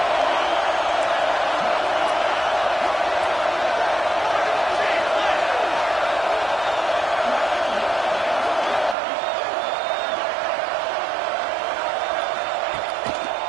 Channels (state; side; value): drops out; left; at 9.0 s